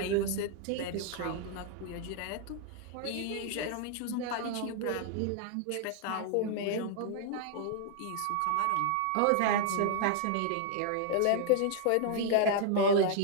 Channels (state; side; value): different; both; correlation 0.00